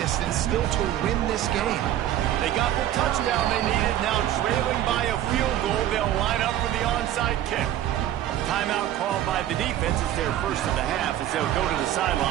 still to win this game. They got the touchdown they needed. Now trailing by a field goal, they'll line up for the onside kick. Timeout called by the defense is their first of the half as they'll go to the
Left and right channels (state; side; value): quieter; left; 12.2 dB